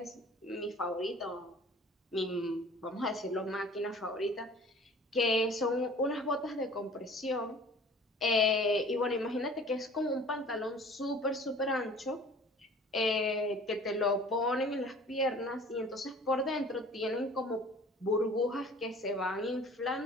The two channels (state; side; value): normal; both; correlation 0.47